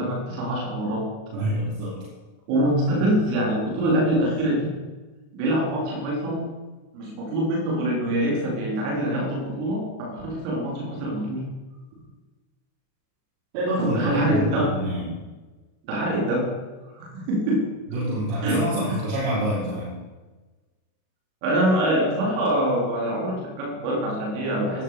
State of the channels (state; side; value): late; left; 38 ms